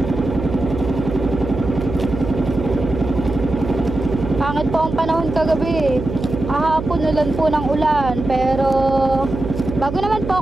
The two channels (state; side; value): noise; right; hum, 7 dB below the sound